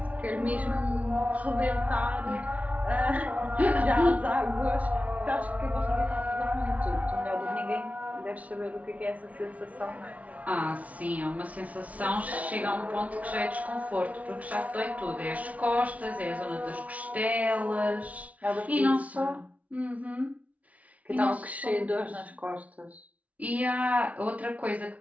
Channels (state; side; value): late; left; 0.069 ms